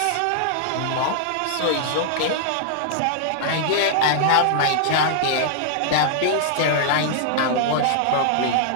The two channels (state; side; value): different; both; correlation -0.01